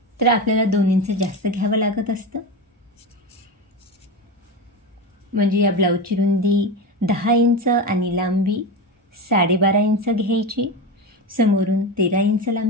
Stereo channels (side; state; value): both; normal; correlation 0.20